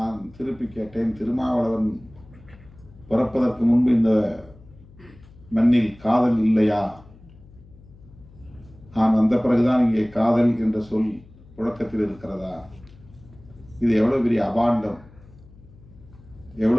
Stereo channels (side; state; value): left; noise; hum, 23 dB below the sound